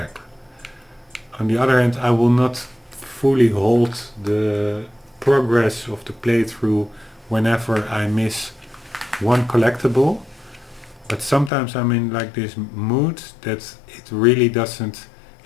On the other hand, I will not fully hold the progress of the playthrough whenever I miss one collectible, but sometimes I'm in like this mood that it really doesn't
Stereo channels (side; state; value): right; drops out; at 11.5 s